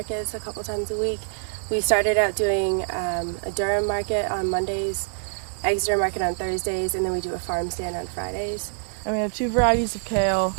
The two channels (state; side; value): silent; left; 59 dB below the other